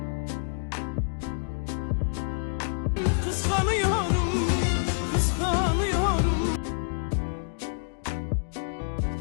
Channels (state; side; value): silent; right; digital silence